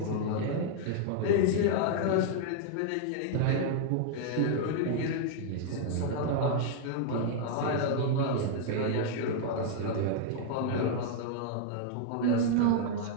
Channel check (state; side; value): different; both; correlation -0.01